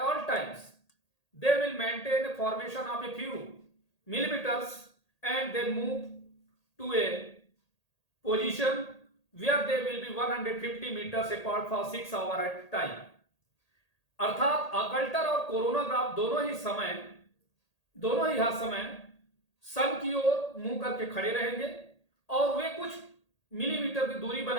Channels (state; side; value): late; right; 1.8 ms